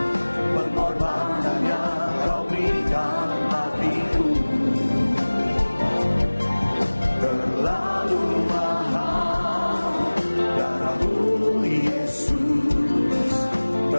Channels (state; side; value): inverted; both; correlation -1.00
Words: pengorbanan yang Kau berikan bagiku terlalu mahal. Darah-Mu Yesus